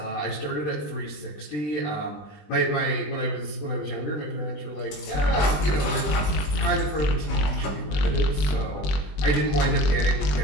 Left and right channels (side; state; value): right; late; 20 ms